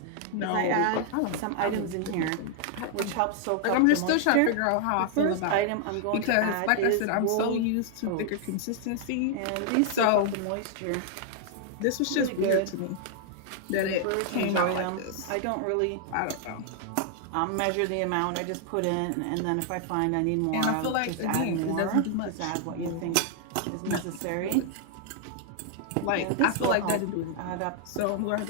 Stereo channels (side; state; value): both; different; correlation 0.00